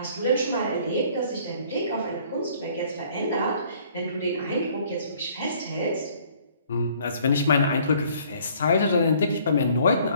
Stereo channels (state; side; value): inverted; both; correlation -0.58